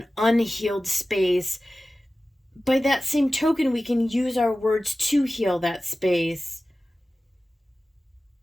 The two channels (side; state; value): both; normal; correlation 0.96